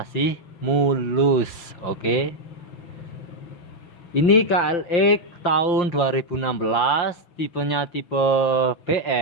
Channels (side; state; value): right; late; 5.7 ms